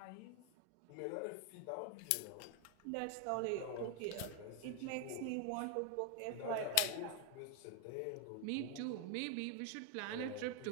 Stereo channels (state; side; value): different; both; correlation 0.00